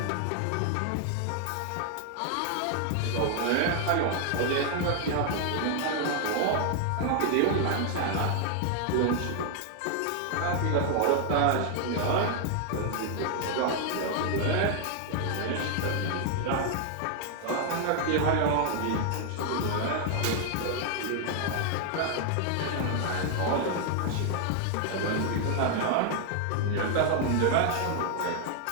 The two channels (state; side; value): different; both; correlation 0.00